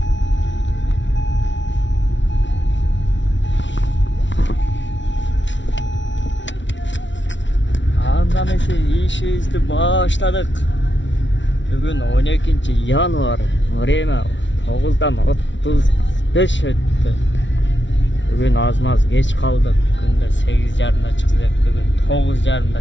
Andamesi işimizni başladık. Bugün 12 yanvar. Время 9'dan 35 öttü. Bugün az geç kaldık. Günde 8:30'da çıkacak. Bugün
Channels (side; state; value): right; late; 0.54 ms